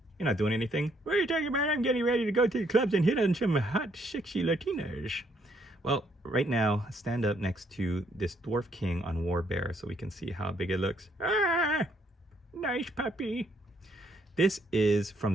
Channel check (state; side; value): normal; both; correlation 0.70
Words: You're not doing anything. What are you talking about? I'm getting ready to go to the clubs and hit on some hot, sexy Latinas. Well, right now, stand up next to this Dwarf King on War Bear so we can see how big it looks. Ah, nice puppy. This is from